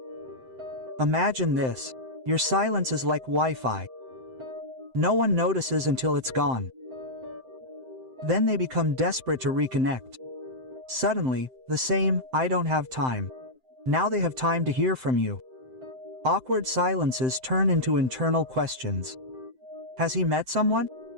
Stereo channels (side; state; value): left; late; 7.8 ms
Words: Imagine this. Your silence is like Wi-Fi. No one notices until it's gone. Then they become desperate to reconnect. Suddenly, the same, "I don't have time." Now they have time to hear from you. Awkward silences turn into internal questions. Has he met someone?